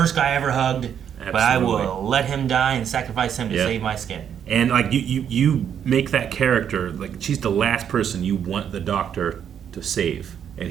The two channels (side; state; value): left; quieter; 8.6 dB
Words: guy I ever hugged. Absolutely. But I will let him die and sacrifice him to save my skin. And like you make that character, like she's the last person you want the Doctor to save,